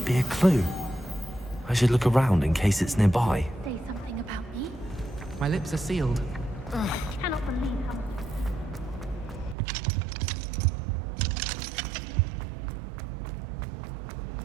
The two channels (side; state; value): left; drops out; at 9.6 s